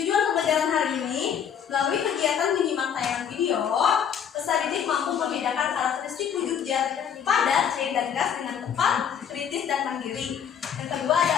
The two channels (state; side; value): quieter; right; 8.2 dB